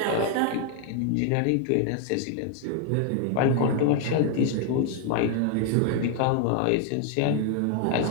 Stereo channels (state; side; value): different; both; correlation 0.00